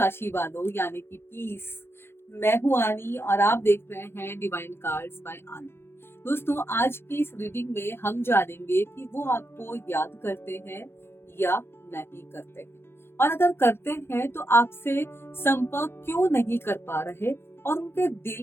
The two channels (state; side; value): late; right; 0.11 ms